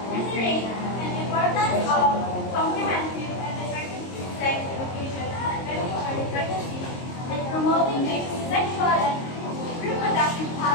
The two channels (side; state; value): right; late; 22 ms